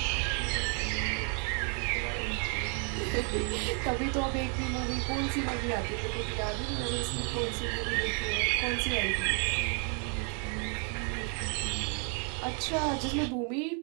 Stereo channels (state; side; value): quieter; left; 39.7 dB